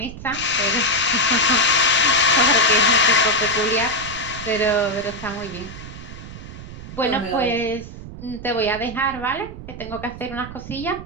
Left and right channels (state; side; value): noise; right; rumble, 13 dB below the sound